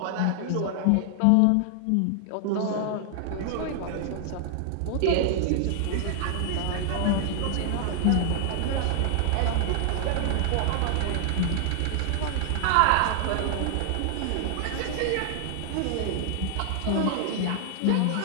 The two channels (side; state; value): both; different; correlation 0.00